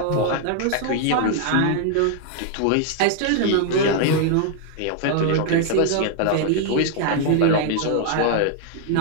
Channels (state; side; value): different; both; correlation 0.00